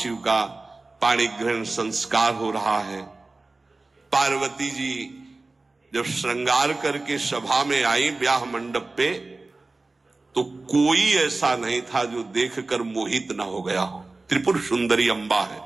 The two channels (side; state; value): left; quieter; 3.3 dB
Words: का पाणिग्रहण संस्कार हो रहा है। पार्वती जी जब श्रृंगार करके सभा में आई ब्याह मंडप पे, तो कोई ऐसा नहीं था जो देखकर मोहित ना हो गया हो। त्रिपुर सुंदरी अंबा है,